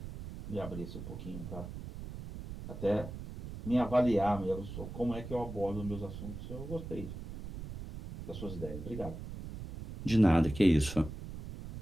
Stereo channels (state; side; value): noise; right; rumble, 10 dB below the sound